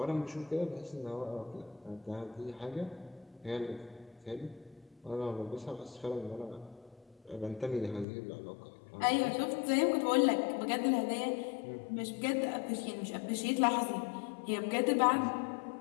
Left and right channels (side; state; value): right; drops out; at 8.1 s